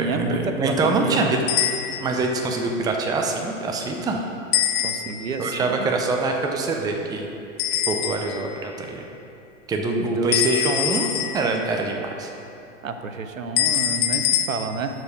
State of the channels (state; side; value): normal; both; correlation 0.14